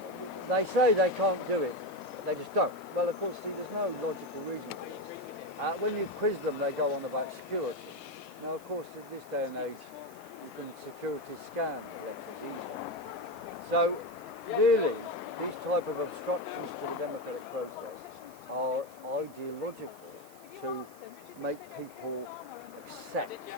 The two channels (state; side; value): noise; right; hiss, 23 dB below the sound